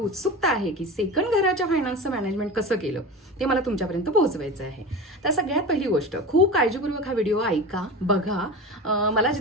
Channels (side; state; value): both; normal; correlation 0.29